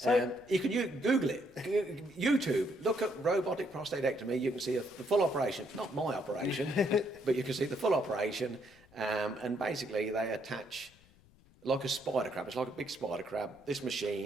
You can Google it. YouTube. Look at robotic prostatectomy. You can see the full operation. Not my operation, but you can see the full operation. And basically, they attach like a spider crab. It's like a big spider crab. This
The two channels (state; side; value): noise; left; rumble, 27 dB below the sound